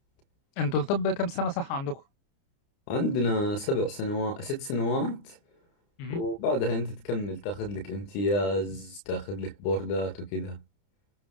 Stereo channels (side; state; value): right; late; 30 ms